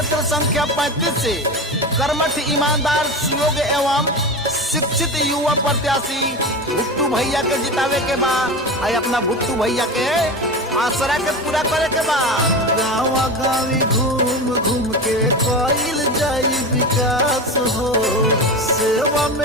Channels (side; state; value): both; normal; correlation 0.25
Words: संख्या 35 से कर्मठ, ईमानदार, सुयोग्य एवं शिक्षित युवा प्रत्याशी भुट्टू भैया के जितावे के बा। अपना भुट्टू भैया के आसरा के पूरा करे के बा। गाँव गाँवी घूम घूम के कइल जाई विकास हो, सेवा